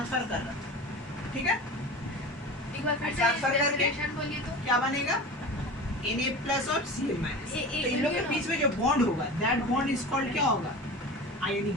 कर रहा है। ठीक है, एक बार फिर ट्रांसफर करके बोलिए तो क्या बनेगा, Na प्लस और Cl माइनस। तो इन लोग के बीच में जो बॉन्ड होगा, दैट बॉन्ड इज कॉल्ड क्या होगा, आयोनिक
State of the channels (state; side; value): normal; both; correlation 0.33